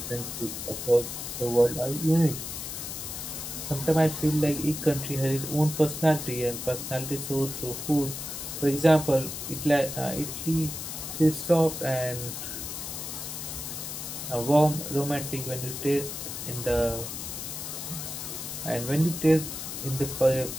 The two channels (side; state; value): left; noise; hiss, 7 dB below the sound